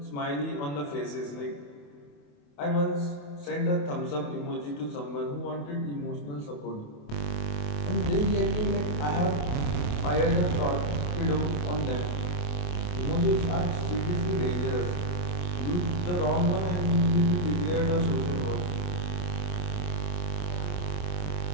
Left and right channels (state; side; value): late; right; 28 ms